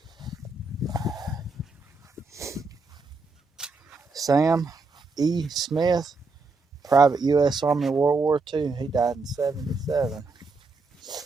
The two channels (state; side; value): quieter; left; 3.9 dB